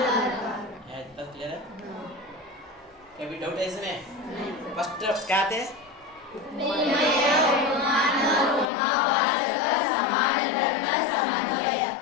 है, तब क्लियर है? कभी डाउट है इसमें? फर्स्ट क्या थे?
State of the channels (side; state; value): right; drops out; at 8.7 s